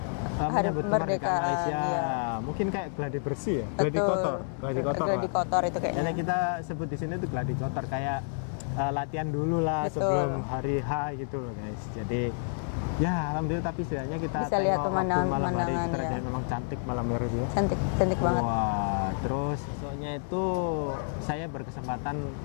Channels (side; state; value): right; silent; digital silence